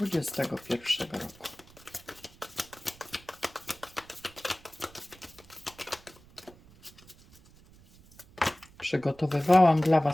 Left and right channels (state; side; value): noise; right; rumble, 24 dB below the sound